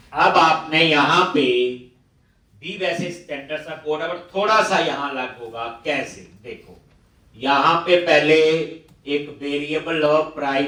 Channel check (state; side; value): identical; both; correlation 1.00